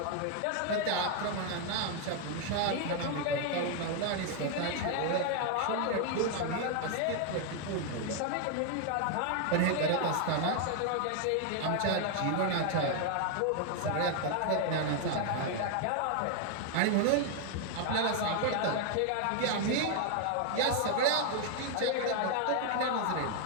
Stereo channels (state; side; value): different; both; correlation 0.00